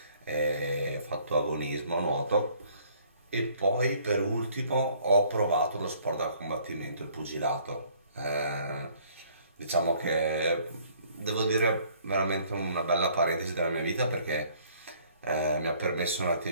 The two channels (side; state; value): both; inverted; correlation -0.60